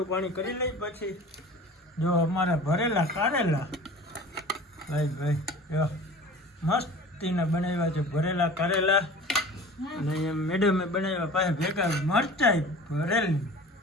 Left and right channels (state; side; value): normal; both; correlation 0.41